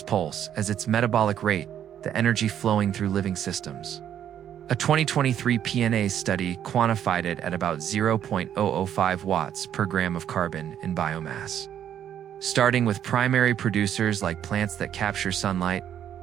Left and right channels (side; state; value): left; quieter; 10.0 dB